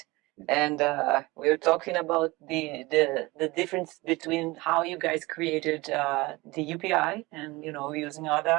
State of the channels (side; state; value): left; quieter; 22.2 dB